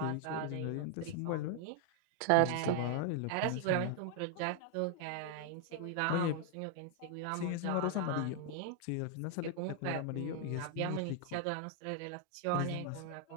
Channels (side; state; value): both; different; correlation 0.00